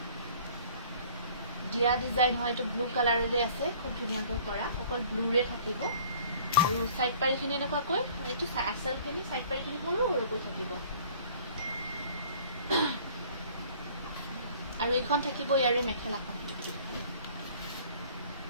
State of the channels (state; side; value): inverted; both; correlation -0.51